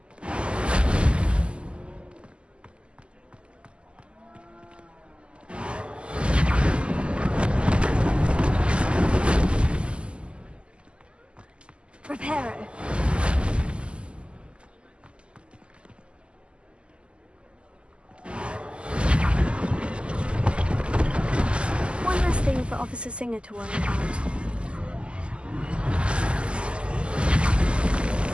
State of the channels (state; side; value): late; left; 0.058 ms